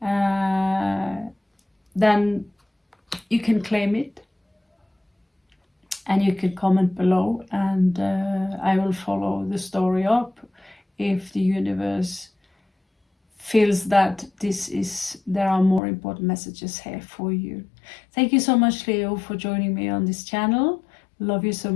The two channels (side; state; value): right; drops out; at 15.8 s